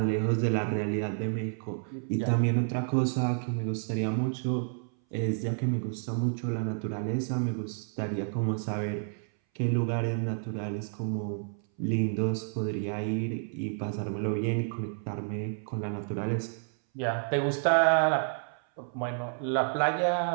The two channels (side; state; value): left; silent; 58 dB below the other